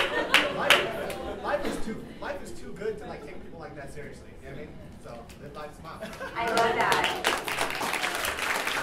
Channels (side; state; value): both; identical; correlation 1.00